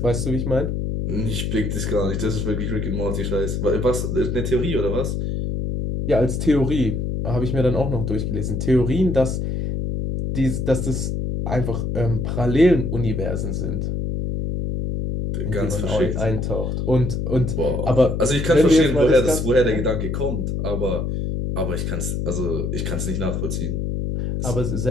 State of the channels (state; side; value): noise; left; hum, 1 dB below the sound